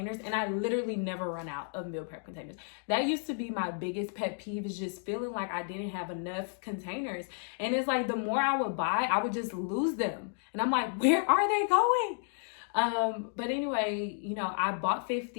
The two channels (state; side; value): silent; right; 56 dB below the other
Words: and I literally never run out of meal prep containers. That used to be my biggest pet peeve, is just feeling like I didn't have enough containers. And it's like the more I would buy, I would just lose them. And I'm like, where are they going? But anyway, you know, I bought